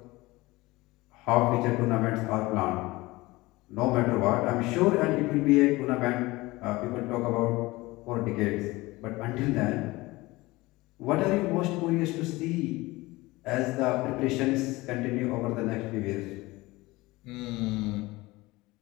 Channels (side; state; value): right; quieter; 20.8 dB